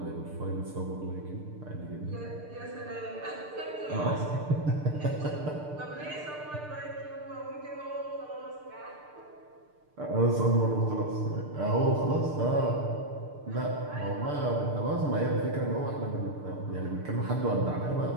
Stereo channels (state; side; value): late; left; 6.7 ms